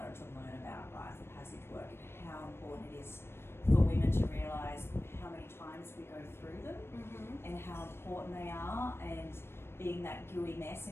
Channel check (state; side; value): late; right; 0.12 ms